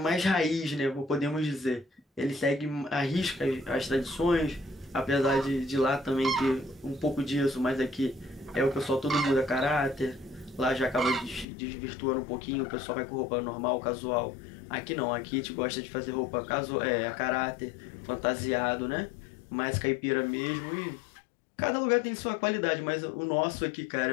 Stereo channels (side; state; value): right; drops out; at 11.5 s